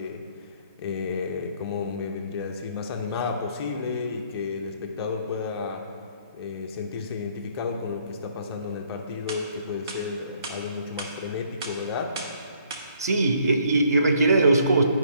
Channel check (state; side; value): inverted; both; correlation -0.64